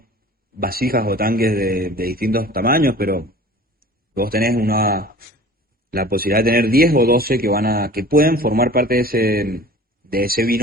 vasijas o tanques de distintos tamaños, pero vos tenés la posibilidad de tener 10 o 12 que pueden formar parte de ese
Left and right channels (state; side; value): normal; both; correlation 0.43